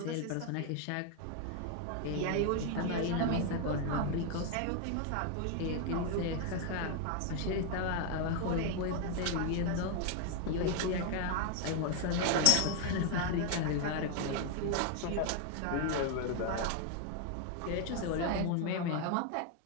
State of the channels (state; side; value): different; both; correlation 0.01